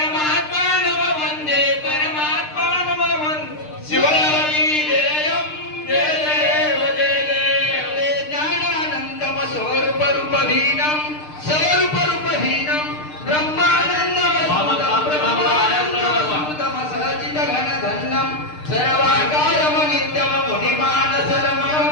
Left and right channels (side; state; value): right; late; 6.6 ms